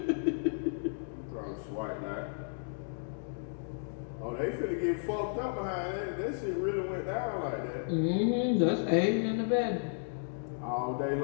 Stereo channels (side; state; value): right; silent; digital silence